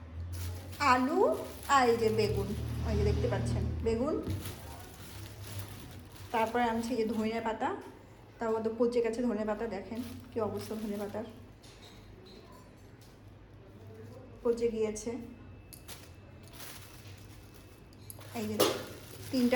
আলু, আর এই যে বেগুন, ওই যে দেখতে পাচ্ছেন বেগুন। তারপরে আনছি এই যে ধনে পাতা, তার মধ্যে পচে গেছে ধনে পাতা, দেখেন কি অবস্থা ধনে পাতার, পচে গিয়েছে। এই যে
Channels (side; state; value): both; identical; correlation 1.00